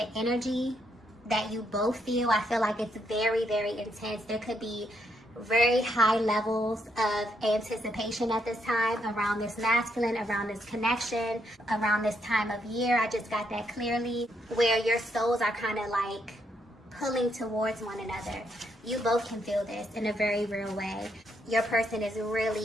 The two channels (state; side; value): normal; both; correlation 0.76